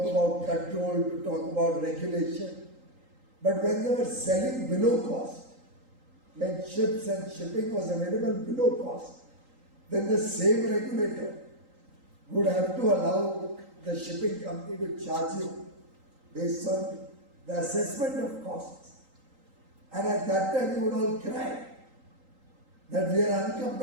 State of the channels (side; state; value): left; late; 3.8 ms